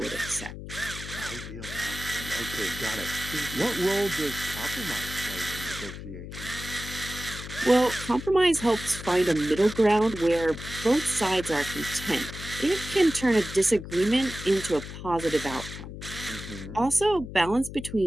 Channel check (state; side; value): noise; left; hum, 10 dB below the sound